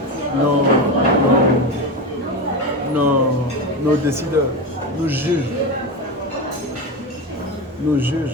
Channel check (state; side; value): normal; both; correlation 0.20